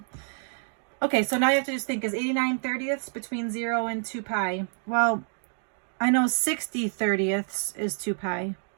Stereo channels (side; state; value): left; silent; 58 dB below the other